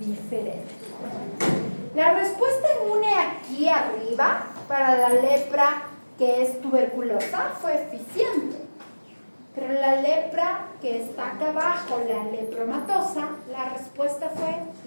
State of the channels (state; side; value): inverted; both; correlation -1.00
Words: La respuesta inmune aquí arriba para la lepra que es tuberculosa fue eficiente, pero la lepra que está acá abajo, la lepromatosa, la respuesta fue